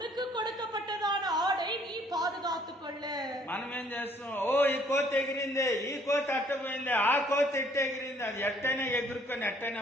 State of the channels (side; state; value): both; normal; correlation 0.62